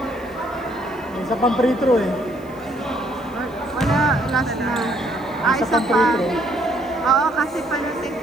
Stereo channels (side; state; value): right; noise; hiss, 29 dB below the sound